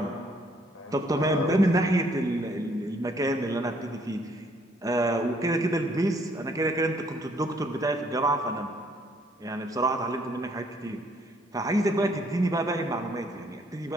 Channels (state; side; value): normal; both; correlation 0.65